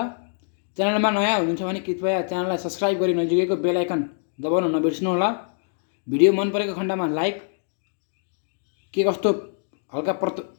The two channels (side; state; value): right; silent; digital silence